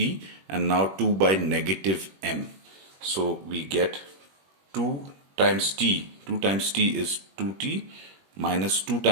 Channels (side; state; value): left; late; 21 ms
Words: and now 2 by negative m. So we get 2 times t. 2 times t is 2t minus 2